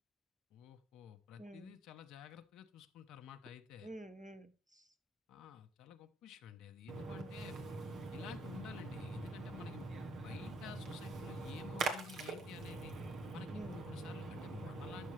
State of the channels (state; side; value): normal; both; correlation 0.67